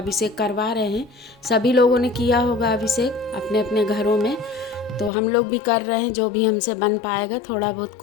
करवा रहे हैं। सभी लोगों ने किया होगा अभिषेक अपने अपने घरों में, तो हम लोग भी कर रहे हैं। जो भी हमसे बन पाएगा थोड़ा बहुत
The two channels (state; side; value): drops out; right; at 5.1 s